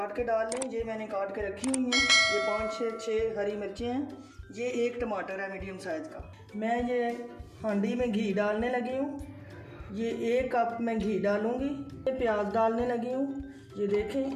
के डाल लें। ये मैंने काट के रखी हुई हैं। ये 5-6 हरी मिर्चें हैं। ये 1 टमाटर है मीडियम साइज़ का। मैं ये हांडी में घी डालने लगी हूँ। ये 1 कप मैं घी डालूँगी। ये प्याज डालने लगी हूँ। ये देखें,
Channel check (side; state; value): both; identical; correlation 1.00